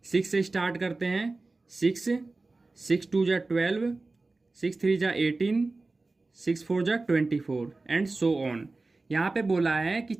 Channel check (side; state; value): left; quieter; 3.4 dB